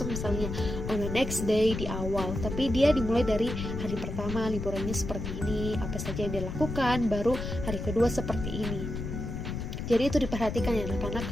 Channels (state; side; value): noise; left; rumble, 5 dB below the sound